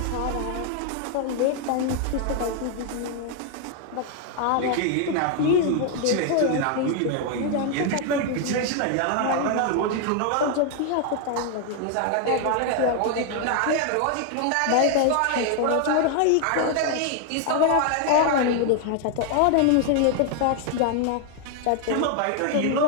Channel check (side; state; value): both; different; correlation 0.00